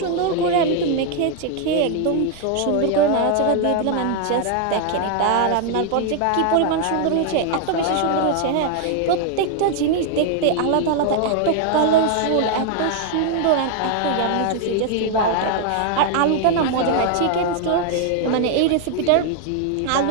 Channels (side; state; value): both; different; correlation 0.00